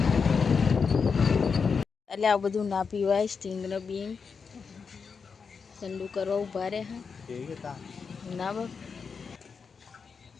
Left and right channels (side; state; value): right; quieter; 5.6 dB